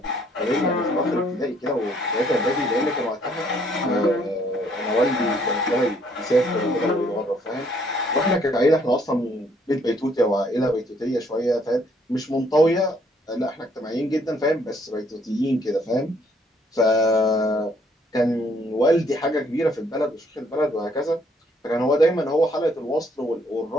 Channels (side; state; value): both; normal; correlation 0.66